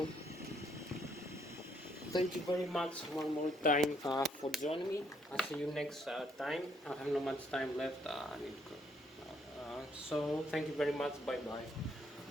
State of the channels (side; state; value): both; normal; correlation 0.69